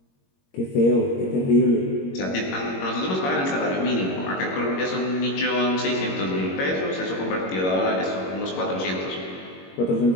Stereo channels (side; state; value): right; late; 21 ms